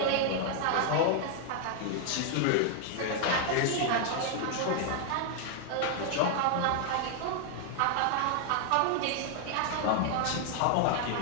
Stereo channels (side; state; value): both; different; correlation 0.00